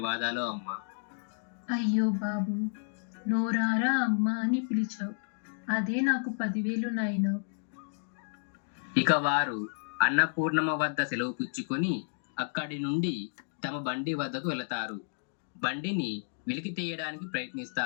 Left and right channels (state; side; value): silent; right; digital silence